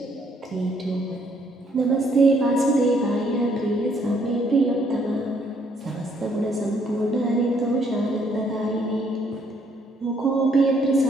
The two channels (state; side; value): normal; both; correlation 0.68